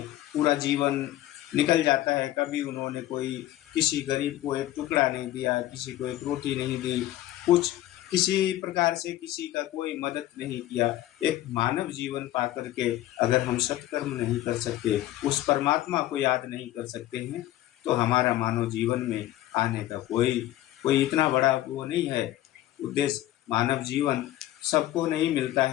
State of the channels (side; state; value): right; quieter; 14.6 dB